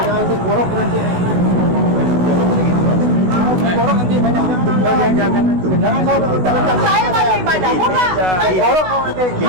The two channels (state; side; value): late; left; 16 ms